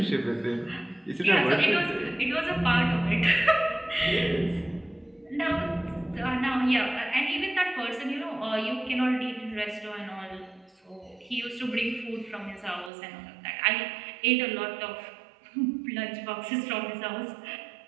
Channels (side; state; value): left; drops out; at 12.9 s